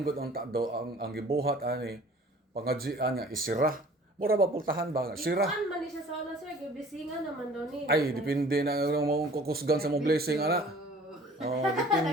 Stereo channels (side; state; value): both; normal; correlation 0.50